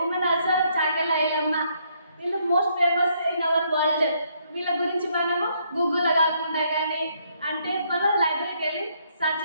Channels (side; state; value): both; inverted; correlation -0.71